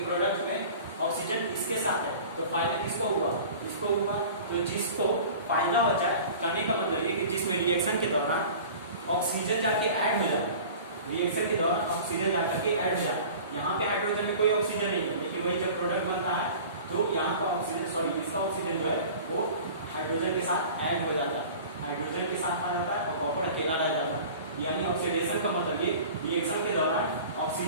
प्रोडक्ट में ऑक्सीजन इसके साथ है, तो फायदा किसको हुआ, इसको हुआ। तो जिसको फायदा हो जाए, कहने का मतलब ये कि जिसमें रिएक्शन के दौरान ऑक्सीजन जाके ऐड हो जाए, रिएक्शन के दौरान ऑक्सीजन जाकर के ऐड हो जाए, यहाँ पे हाइड्रोजन में कोई ऑक्सीजन नहीं है, लेकिन वही जब प्रोडक्ट बनता है तो यहाँ का ऑक्सीजन इसका ऑक्सीजन जो है वो हाइड्रोजन के साथ ऐड हो जाता है, हाइड्रोजन के साथ आ जाता है और कॉपर अकेला रह जाता है। यानी ऑक्सीडेशन का मतलब ये रिएक्शन के दौरान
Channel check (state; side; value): inverted; both; correlation -0.41